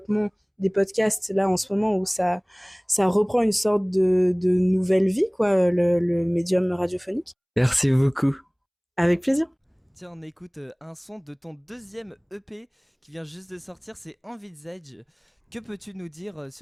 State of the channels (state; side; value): identical; both; correlation 1.00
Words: des podcasts là en ce moment où ça reprend une sorte de nouvelle vie, quoi, le médium radiophonique. Merci beaucoup. Avec plaisir. Tiens, on écoute un son de ton deuxième EP qui vient juste de sortir, c'est Envisage. Que peux-tu nous dire